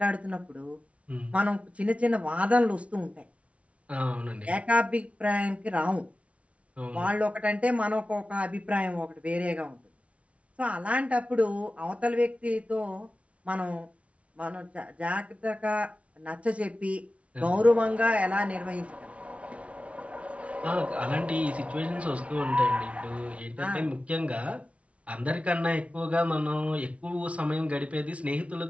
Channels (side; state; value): left; late; 0.063 ms